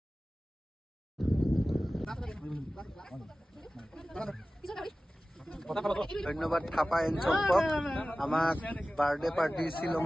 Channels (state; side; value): normal; both; correlation 0.96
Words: ধন্যবাদ থাপা এণ্ড চম্পক আমাক বাৰ্থডে পাৰ্টি